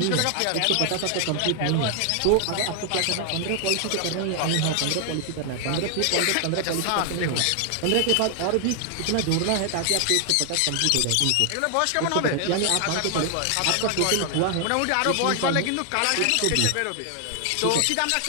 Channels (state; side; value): different; both; correlation 0.00